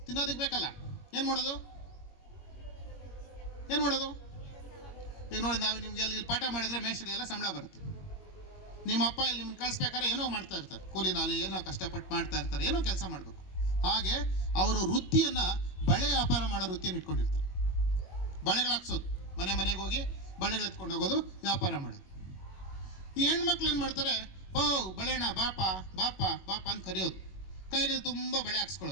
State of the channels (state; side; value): late; right; 21 ms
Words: ತಿನ್ನೋದಕ್ಕೆ ಬೇಕಲ್ಲ, ಏನು ಮಾಡೋದು? ಈಗ ನೋಡಿ, ನಾವು ನಿಮ್ಗೆ ಇಲ್ಲಿ ಪಾಠ ಮಾಡಿದ್ರೆ ಮೇಷ್ಟ್ರಿಗೆಲ್ಲ ಸಂಬಳ ಬರುತ್ತೆ. ನಿಮ್ಮ ಅಪ್ಪ ಇಲ್ಲಿ ನಿಮ್ಮನ್ನು ಕಳಿಸ್ಬೇಕಾದ್ರೆ ಏನೋ ಮಾಡ್ತಾ ಇರ್ತಾರೆ, ಕೂಲಿ ನಾಲಿ ಏನೋ ಕಷ್ಟಪಟ್ಟು ಮಾಡ್ತಾ ಇರ್ತಾರೆ, ಏನೋ ಕೆಲಸ ಮಾಡಬೇಕು. ಹಾಗೆ ಅವರು ವೃತ್ತಿಯನ್ನು ಬಳೆ ವ್ಯಾಪಾರ ಮಾಡೋ ವೃತ್ತಿಯನ್ನು ಇಟ್ಕೊಂಡಿರ್ತಾರೆ. ಬಳೆಗಳು ಹಾಕ್ಸೋದು, ಮನೆ ಮನೆಗೆ ಹೋಗಿ ಬಳೆಗಳು ಎತ್ಕೊಂಡು ಹೋಗೋದು, ವ್ಯಾಪಾರ ಮಾಡೋದು. ಈ ಹೆಣ್ಮಕ್ಳು ಏನು ಮಾಡ್ತಾರೆ, ಓ ಬಳೆಣ ಬಾಪ ಬಾಪ ಬಾಪ ಅಂತ ಕರೆಯೋದು, ಕೈಗಳು ತುಂಬ ಬಳೆ